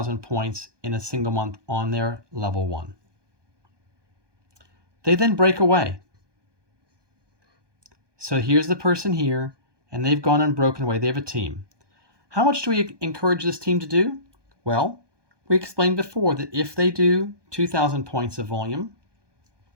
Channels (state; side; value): late; left; 1.2 ms